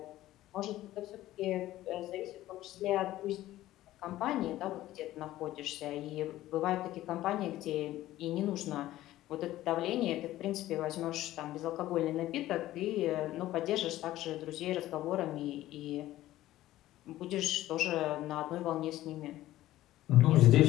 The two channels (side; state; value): right; quieter; 15.0 dB